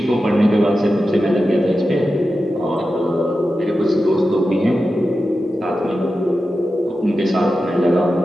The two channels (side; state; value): both; normal; correlation 0.92